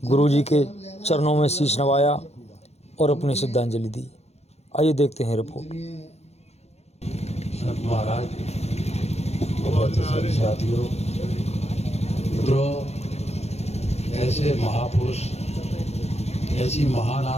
गुरुजी के चरणों में शीश नवाया और अपनी श्रद्धांजलि दी। आइए देखते हैं रिपोर्ट। संत महाराज, बहुत सारे साथियों, मित्रों, ऐसे महापुरुष, ऐसी महान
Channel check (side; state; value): right; late; 0.31 ms